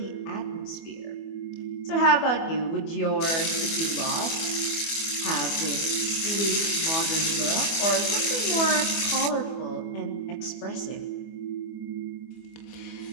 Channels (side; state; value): right; late; 24 ms